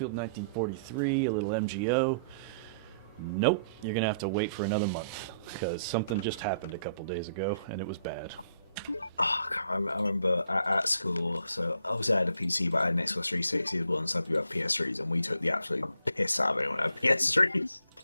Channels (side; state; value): both; inverted; correlation -0.67